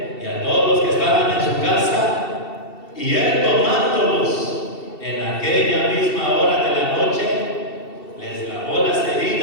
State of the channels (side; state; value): right; late; 2.7 ms